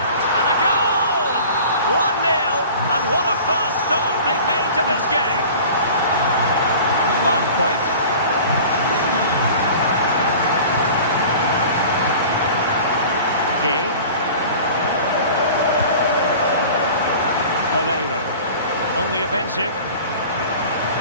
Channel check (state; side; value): inverted; both; correlation -0.41